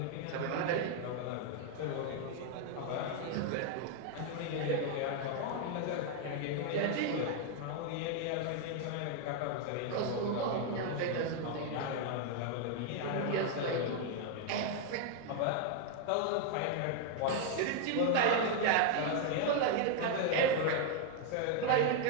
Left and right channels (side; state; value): both; different; correlation 0.00